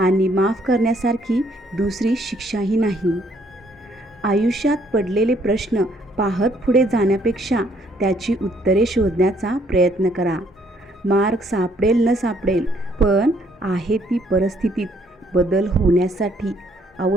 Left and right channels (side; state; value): both; normal; correlation 0.67